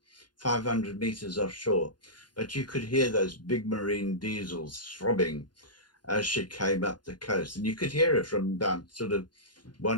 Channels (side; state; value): right; late; 0.71 ms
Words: 500 meters offshore. But you could hear those big marine diesels throbbing as she came up the coast. And you could hear it from about sort of